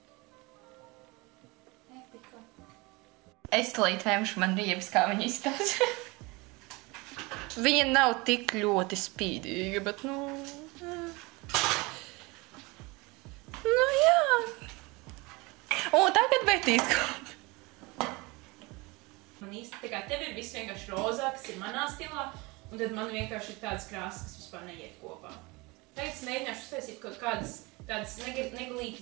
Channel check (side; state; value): left; quieter; 25.0 dB